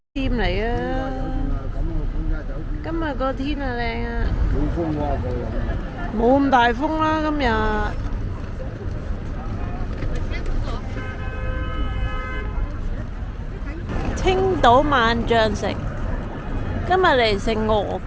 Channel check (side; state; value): both; identical; correlation 1.00